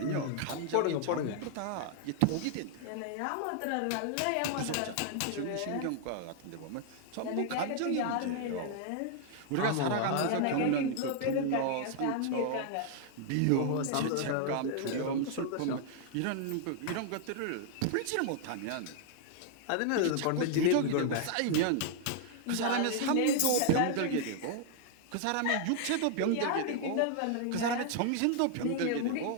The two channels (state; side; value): different; both; correlation 0.00